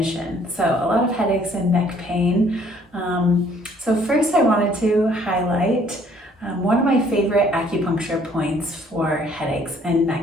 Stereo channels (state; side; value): normal; both; correlation 0.61